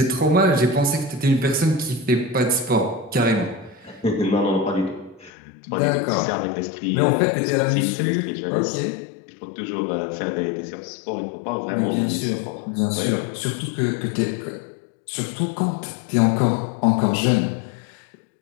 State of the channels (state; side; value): drops out; right; at 5.3 s